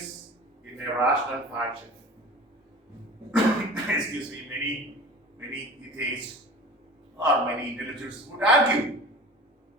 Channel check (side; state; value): both; normal; correlation 0.38